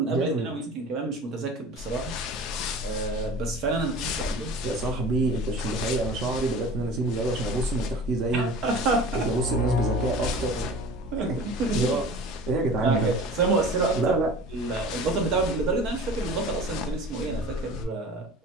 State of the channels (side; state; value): both; normal; correlation 0.40